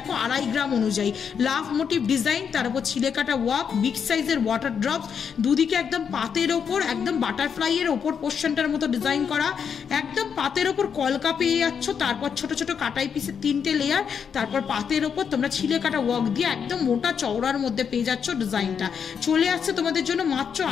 2.5 গ্রাম অনুযায়ী লাভ মোটিভ ডিজাইন, তার উপর ছিলে কাটা ওয়ার্ক, বিগ সাইজের ওয়াটার ড্রপস, দুদিকে একদম পাতের ওপর একদম বাটারফ্লাইয়ের ওপর পোর্শনটার মতো ডিজাইন করা, একদম পাতের ওপর কলকা পেয়ে যাচ্ছ। তারপর ছোট ছোট কাটাই পিসের 3টে লেয়ার, তারপর পাতের ওপর তোমরা ছিলে কাটা ওয়ার্ক দিয়ে একদম মোটা চওড়ার মধ্যে পেয়ে যাচ্ছ ডিজাইনটা। চলে আসছে তোমাদের জন্য মাত্র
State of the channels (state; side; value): quieter; right; 7.1 dB